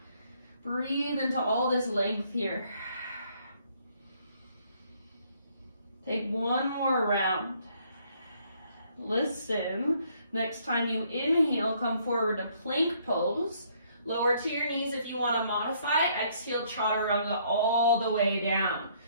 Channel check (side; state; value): both; inverted; correlation -0.66